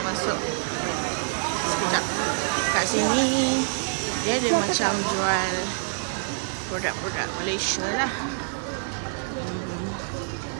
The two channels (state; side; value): silent; left; digital silence